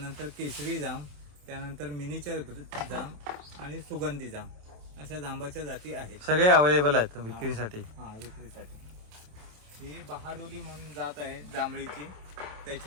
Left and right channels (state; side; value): late; left; 27 ms